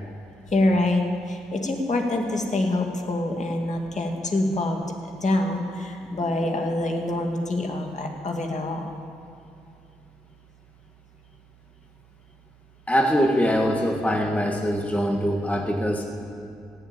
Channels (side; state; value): right; noise; hum, 28 dB below the sound